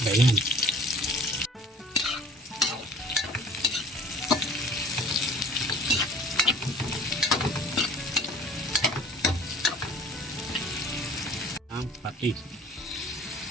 Ganyan. Ang patis.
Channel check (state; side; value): normal; both; correlation 0.48